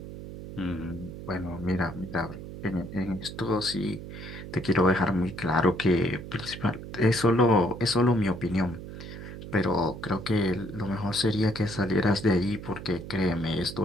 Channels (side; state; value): right; noise; hum, 11 dB below the sound